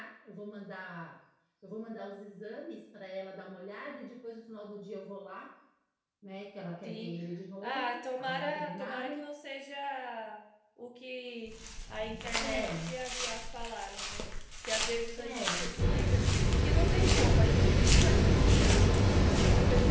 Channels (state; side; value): identical; both; correlation 1.00